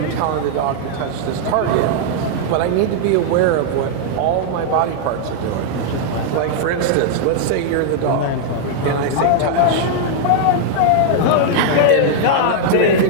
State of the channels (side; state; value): both; different; correlation -0.01